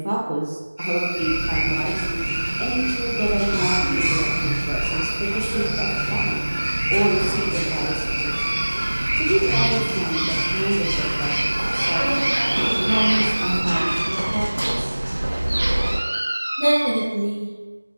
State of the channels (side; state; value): both; inverted; correlation -1.00